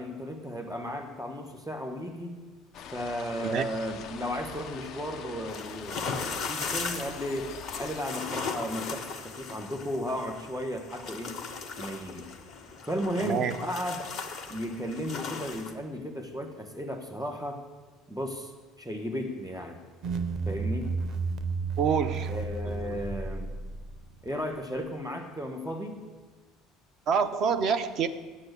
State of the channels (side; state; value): both; normal; correlation 0.61